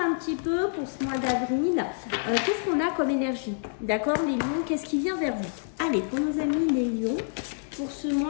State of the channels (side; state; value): right; silent; digital silence